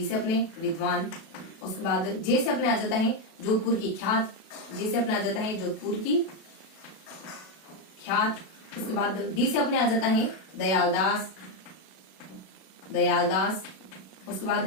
से अपने विद्वान। उसके बाद जे से अपने आ जाता है जोधपुर की ख्यात, जे से अपने आ जाता है जोधपुर की ख्यात। उसके बाद डी से अपने आ जाता है दयालदास। उसके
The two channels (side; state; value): right; late; 37 ms